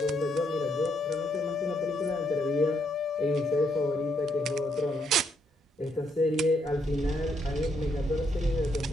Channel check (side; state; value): both; normal; correlation 0.75